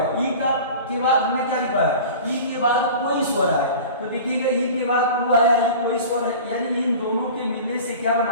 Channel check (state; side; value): inverted; both; correlation -0.38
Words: ई का के बाद हमने क्या लिखा है, ई के बाद कोई स्वर आए तो देखिएगा ई के बाद ऊ आया है, कोई स्वर है, यानी इन दोनों के मिलने से क्या